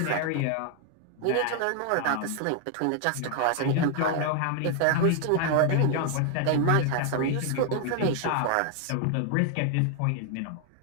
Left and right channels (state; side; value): different; both; correlation 0.00